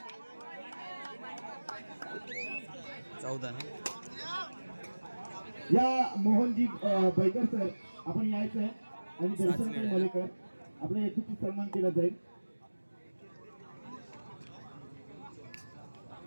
या मोहनजी बैकर सर आपण यायचं आहे आणि दर्शनताई मलेकर आपलं यथोचित सन्मान केला जाईल.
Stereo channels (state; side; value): inverted; both; correlation -1.00